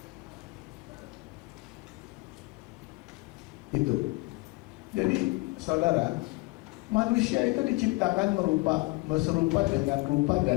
Itu. Jadi saudara, manusia itu diciptakan serupa dengan rupa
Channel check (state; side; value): quieter; right; 25.4 dB